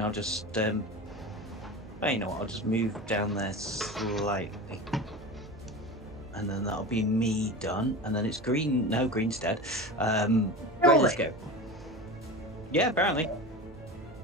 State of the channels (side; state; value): right; noise; hum, 19 dB below the sound